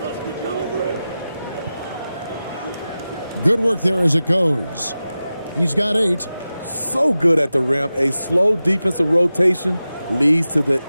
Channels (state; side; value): inverted; both; correlation -0.94